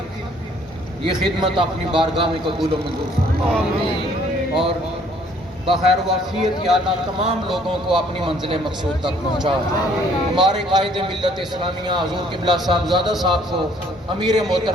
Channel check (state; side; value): normal; both; correlation 0.61